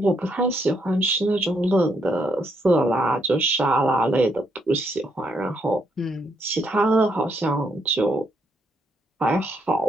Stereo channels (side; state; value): both; normal; correlation 0.75